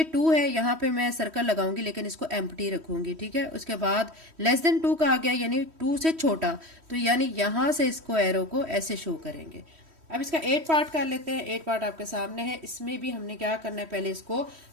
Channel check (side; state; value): left; late; 3.1 ms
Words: 2 है, यहाँ पे मैं सर्कल लगाऊंगी लेकिन इसको एम्प्टी रखूंगी। ठीक है, उसके बाद लेस देन 2 कहा गया यानी 2 से छोटा, तो यानी यहाँ से इसको एरो को ऐसे शो करेंगे। अब इसका 8 पार्ट कर लेते हैं। 8 पार्ट आपके सामने है। इसमें भी हमने क्या करना है, पहले इसको